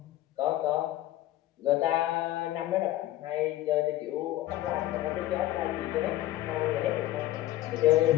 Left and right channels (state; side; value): quieter; right; 15.1 dB